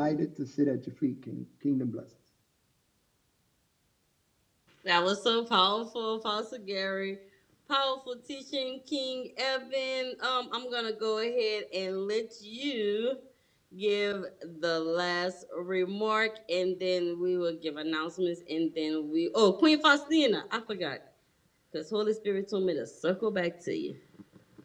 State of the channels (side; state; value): both; identical; correlation 1.00